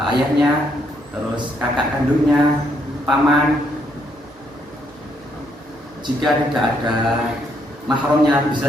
ayahnya, terus kakak kandungnya, paman. Jika tidak ada mahramnya,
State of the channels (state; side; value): normal; both; correlation 0.73